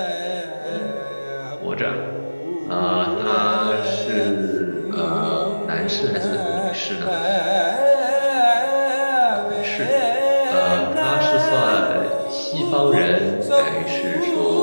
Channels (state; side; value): inverted; both; correlation -1.00